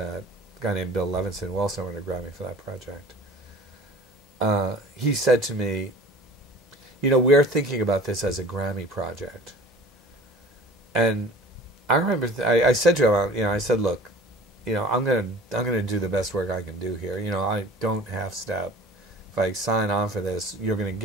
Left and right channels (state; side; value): normal; both; correlation 0.44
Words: a guy named Bill Levinson, who also won a Grammy for that project, he said to me, you know, we're thinking about this as a Grammy project. And I remember I said to him, you know, I said, look, you know, I'm gonna do the best work I can do here. You know, I don't half step. If I sign on for this, you're gonna